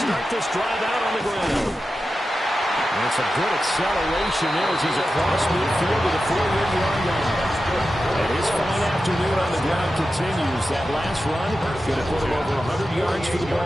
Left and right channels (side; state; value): both; normal; correlation 0.92